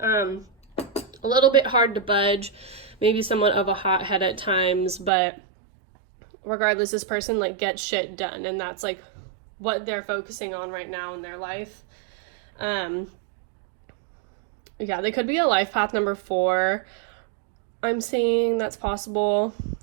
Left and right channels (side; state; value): left; drops out; at 5.1 s